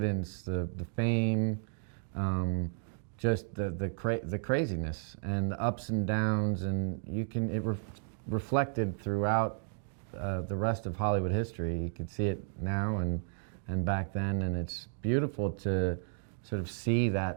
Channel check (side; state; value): left; silent; digital silence